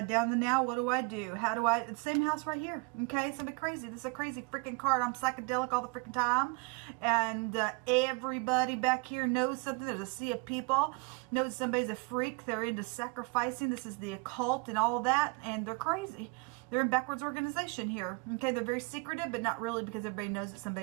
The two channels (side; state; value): left; quieter; 30.4 dB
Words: down the now. What do I do? How do I? It's the same house right here. Okay, somebody crazy. This is a crazy freaking card. I'm psychedelic all the freaking time, and everybody back here knows something. There's a sea of people. Knows somebody's a freak. They're into sacrificing. This is the occult and all that, and they're crazy. They're in backwards organization here. Okay, they're very secretive, but not really, because everybody knows that